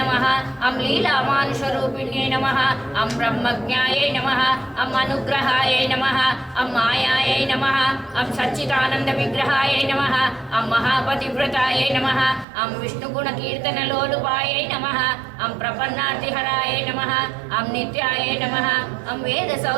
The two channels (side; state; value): left; drops out; at 12.5 s